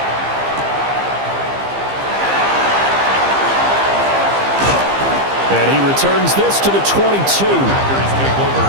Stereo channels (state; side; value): late; left; 15 ms